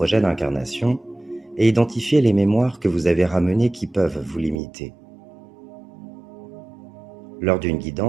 d'incarnation et identifier les mémoires que vous avez ramenées qui peuvent vous limiter. Lors d'une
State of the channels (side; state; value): left; drops out; at 4.6 s